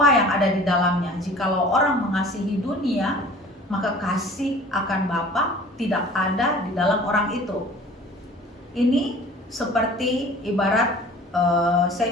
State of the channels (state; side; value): normal; both; correlation 0.46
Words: yang ada di dalamnya. Jikalau orang mengasihi dunia, maka kasih akan Bapa tidak ada di dalam orang itu. Ini seperti ibarat saya